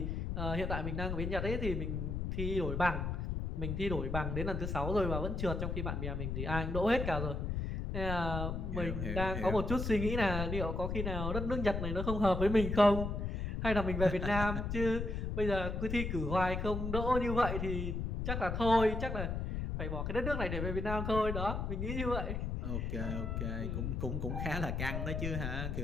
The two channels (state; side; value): noise; left; rumble, 2 dB below the sound